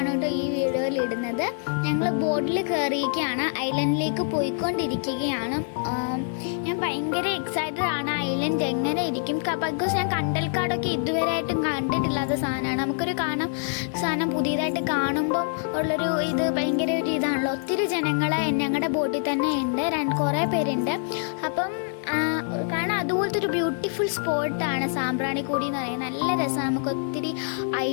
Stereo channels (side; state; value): right; silent; 61 dB below the other